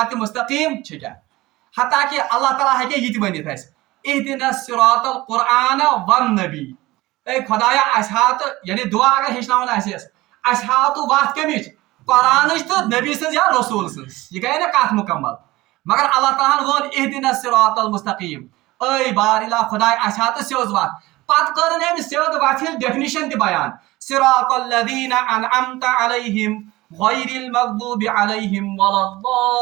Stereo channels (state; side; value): quieter; left; 19.2 dB